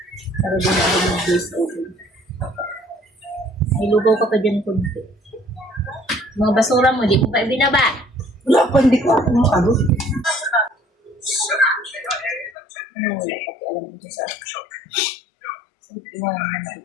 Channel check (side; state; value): right; drops out; at 12.6 s